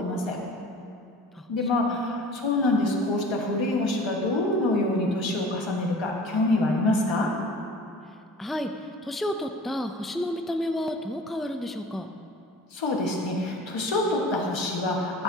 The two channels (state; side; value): normal; both; correlation 0.42